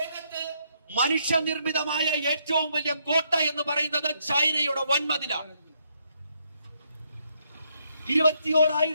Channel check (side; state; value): both; inverted; correlation -0.74